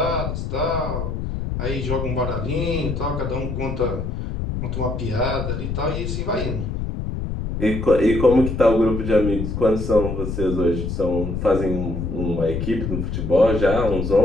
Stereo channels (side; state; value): left; noise; rumble, 4 dB below the sound